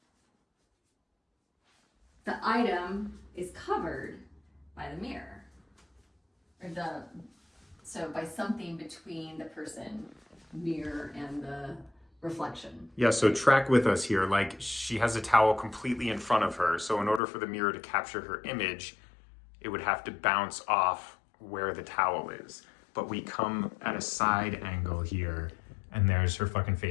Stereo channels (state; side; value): drops out; right; at 17.2 s